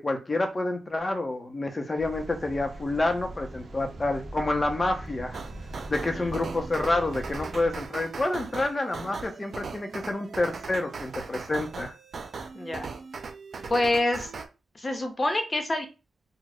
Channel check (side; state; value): both; normal; correlation 0.93